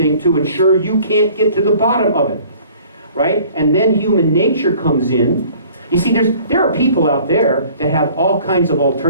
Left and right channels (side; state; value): both; inverted; correlation -0.52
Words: to ensure you can't get to the bottom of it, right? And then human nature comes in. You see, there are people out there that have all kinds of